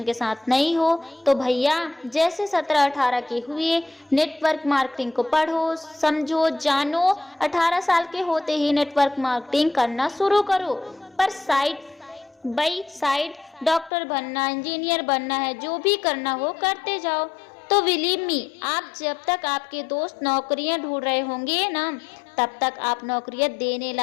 के साथ नहीं हो, तो भैया जैसे 17-18 के हुए नेटवर्क मार्केटिंग को पढ़ो, समझो, जानो। 18 साल के होते ही नेटवर्क मार्केटिंग करना शुरू करो। पर साइड बाई साइड डॉक्टर बनना, इंजीनियर बनना है, जो भी करना हो करते जाओ। तो बिलीव मी, आप जब तक आपके दोस्त नौकरियां ढूंढ रहे होंगे ना, तब तक आप नौकरियां देने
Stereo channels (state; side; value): drops out; right; at 13.9 s